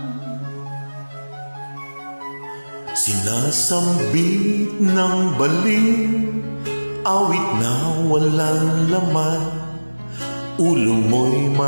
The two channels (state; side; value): inverted; both; correlation -1.00